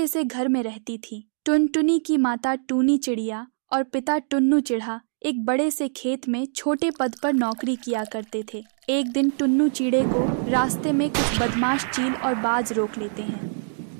से घर में रहती थी। टुनटुनी की माता टूनी चिड़िया और पिता टुन्नू चिढ़ा एक बड़े से खेत में छोटे पद पर नौकरी किया करते थे। एक दिन टुन्नू चिड़े को रास्ते में कुछ बदमाश चील और बाज रोक लेते हैं।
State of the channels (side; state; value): left; silent; digital silence